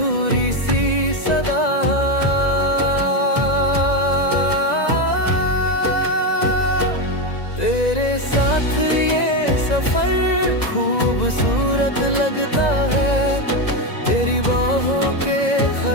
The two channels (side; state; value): right; late; 1.9 ms